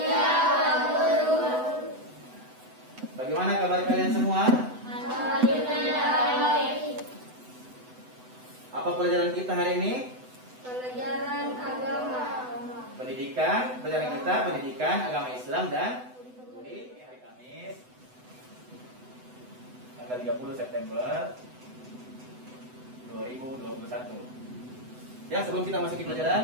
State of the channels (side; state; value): left; late; 8.0 ms